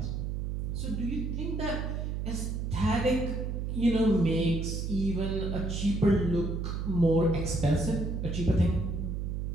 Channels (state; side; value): noise; right; hum, 2 dB below the sound